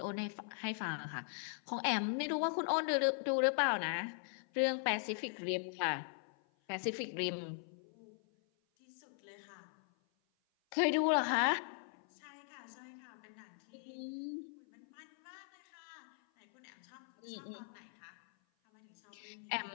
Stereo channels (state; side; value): silent; right; 51 dB below the other